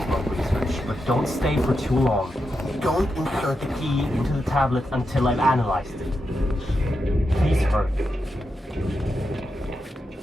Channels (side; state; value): both; normal; correlation 0.87